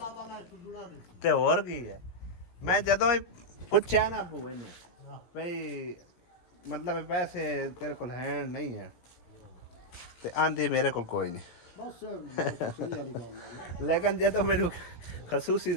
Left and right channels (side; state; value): right; late; 17 ms